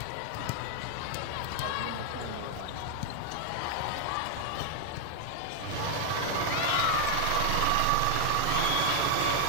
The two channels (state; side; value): different; both; correlation 0.01